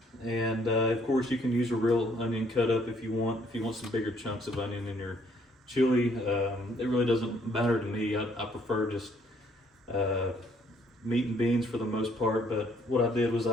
And of course you can use a real onion cut up if you want some bigger chunks of onion in your chili. It really doesn't matter to me. I prefer just meat and beans for the most part, but what I did was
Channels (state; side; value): normal; both; correlation 0.65